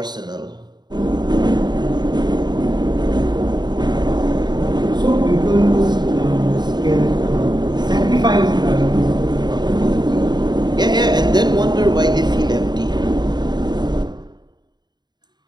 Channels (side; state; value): left; late; 0.21 ms